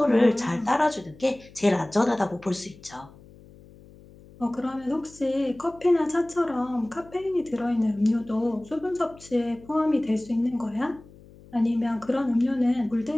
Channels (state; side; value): noise; left; hum, 23 dB below the sound